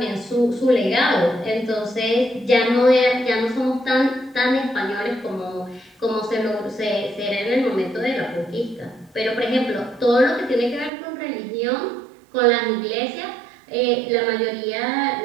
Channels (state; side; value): drops out; left; at 10.9 s